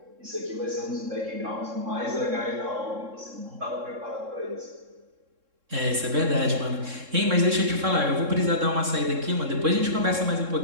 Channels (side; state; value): left; late; 3.7 ms